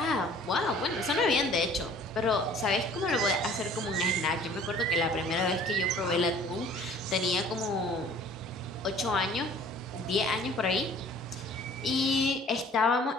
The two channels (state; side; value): normal; both; correlation 0.51